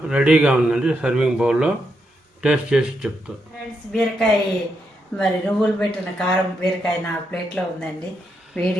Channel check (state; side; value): normal; both; correlation 0.81